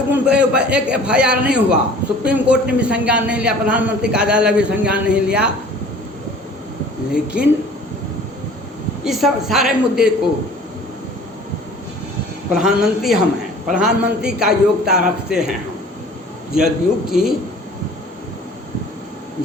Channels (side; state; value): both; normal; correlation 0.48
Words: उन पर एक FIR नहीं हुआ। सुप्रीम कोर्ट ने भी संज्ञान नहीं लिया, प्रधानमंत्री कार्यालय भी संज्ञान नहीं लिया। लेकिन इस सब सारे मुद्दे को प्रधानमंत्री हम हैं, प्रधानमंत्री का योग्यता रखते हैं हम।